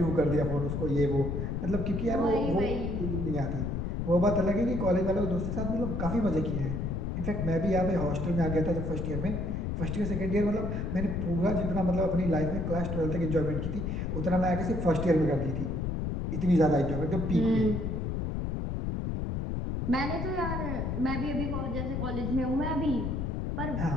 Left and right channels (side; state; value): left; noise; rumble, 2 dB below the sound